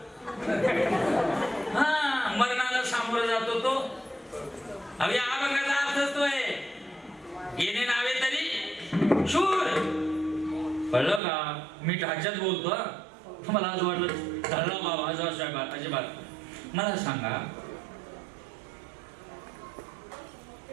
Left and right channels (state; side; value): drops out; left; at 11.2 s